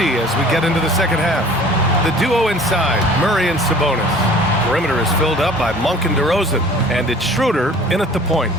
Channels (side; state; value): both; normal; correlation 0.48